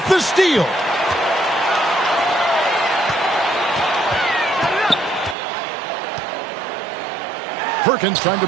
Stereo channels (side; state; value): left; drops out; at 5.4 s